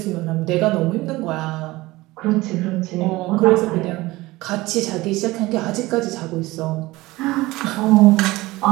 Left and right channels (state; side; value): quieter; left; 19.7 dB